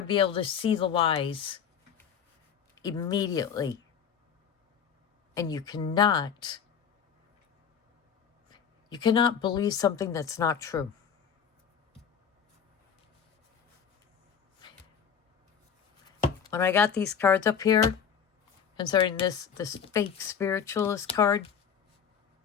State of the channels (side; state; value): right; quieter; 7.5 dB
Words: be able to see the lies immediately. And you cannot believe something that's not true. When I got these cards up here, concerning this fake spiritualist card,